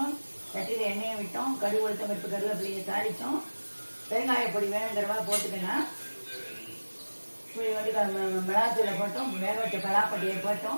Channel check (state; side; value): inverted; both; correlation -1.00